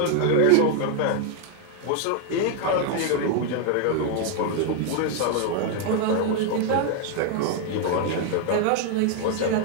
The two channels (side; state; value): both; different; correlation 0.00